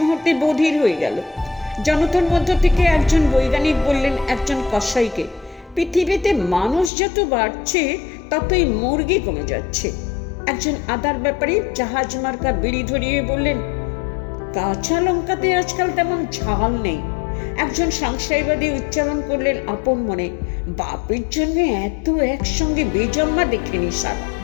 বধির হয়ে গেল। জনতার মধ্য থেকে একজন বৈজ্ঞানিক বললেন একজন কসাইকে, পৃথিবীতে মানুষ যত বাড়ছে ততই মুরগি কমে যাচ্ছে। একজন আদার ব্যাপারী জাহাজ মার্কা বিড়ি ধরিয়ে বললেন, কাঁচা লঙ্কাতে আজকাল তেমন ঝাল নেই। একজন সংশয়বাদী উচ্চারণ করলেন আপন মনে, বাপের জন্য এত একসঙ্গে বেজম্মা দেখেনি স্যার।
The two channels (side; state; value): right; drops out; at 6.9 s